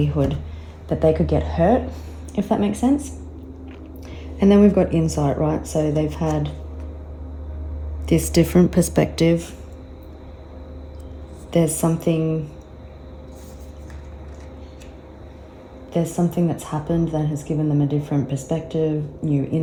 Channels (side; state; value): both; identical; correlation 1.00